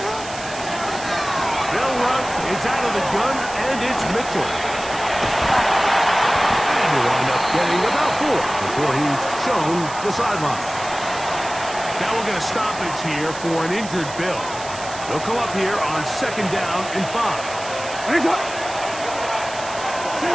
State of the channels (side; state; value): right; noise; hiss, 13 dB below the sound